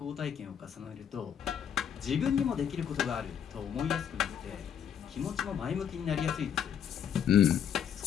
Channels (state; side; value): quieter; right; 8.6 dB